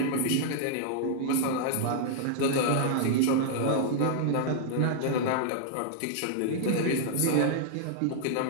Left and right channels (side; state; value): both; different; correlation -0.01